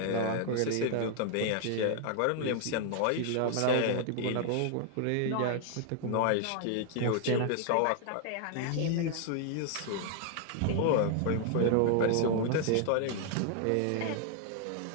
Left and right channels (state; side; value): different; both; correlation 0.00